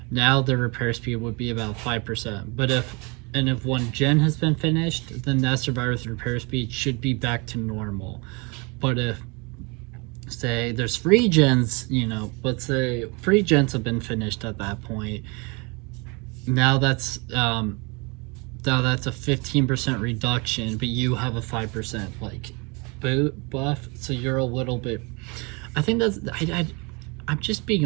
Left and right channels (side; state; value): left; quieter; 29.6 dB